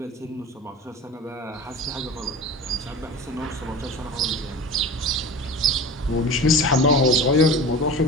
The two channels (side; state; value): both; normal; correlation 0.34